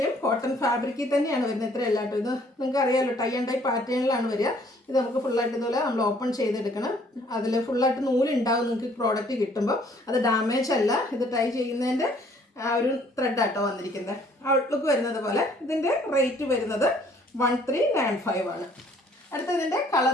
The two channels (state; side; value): normal; both; correlation 0.60